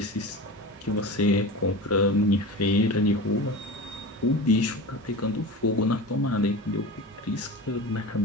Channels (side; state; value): both; normal; correlation 0.30